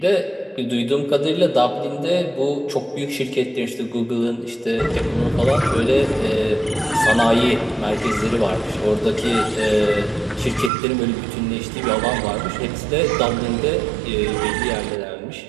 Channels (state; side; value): drops out; left; at 10.7 s